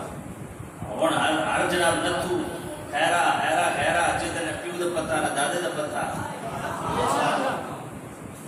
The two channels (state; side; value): identical; both; correlation 1.00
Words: ہر جناب نتو خیرا خیرا خیرا جدن پیو دا پتہ نہ دادے دا پتہ،